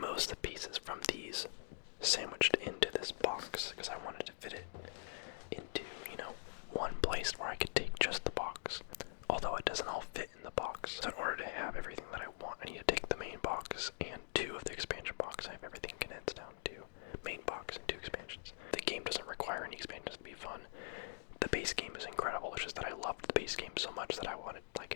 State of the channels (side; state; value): right; silent; digital silence